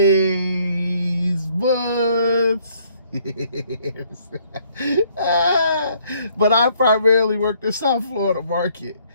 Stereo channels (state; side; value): inverted; both; correlation -0.65